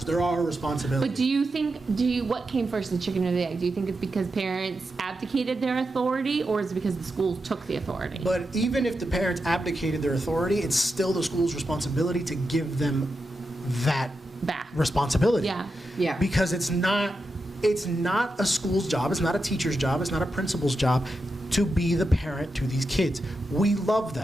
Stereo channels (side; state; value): both; normal; correlation 0.88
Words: They're our responsibility. But what came first, the chicken or the egg? Do you think it's because parents abdicated their authority, or is it because the schools took the authority? But even if the parents abdicated their authority, it's still the school's responsibility to give them that Back. responsibility. Yeah. Yeah. Because it's not a school's job, it's not a teacher's job, it's not a principal's job to be the parent to these kids. We love